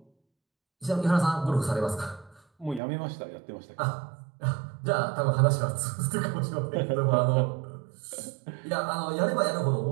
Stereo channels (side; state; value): left; drops out; at 2.8 s